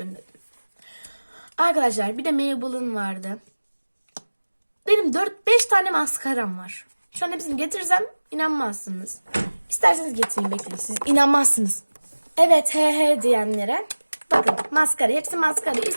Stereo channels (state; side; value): inverted; both; correlation -1.00